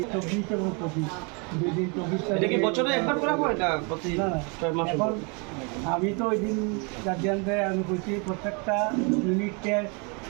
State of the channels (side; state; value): left; quieter; 33.2 dB